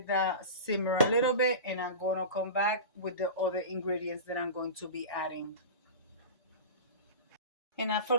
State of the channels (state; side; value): inverted; both; correlation -0.30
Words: that simmer a little bit, and I'm going to come back with the other ingredients that I'm going to be adding. And I